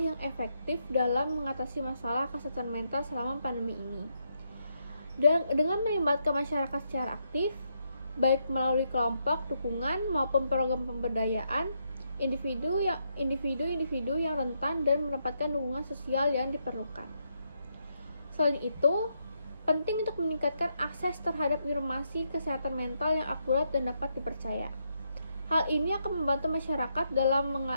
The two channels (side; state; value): both; inverted; correlation -0.79